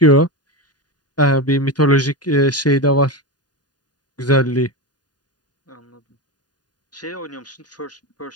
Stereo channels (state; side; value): late; right; 0.69 ms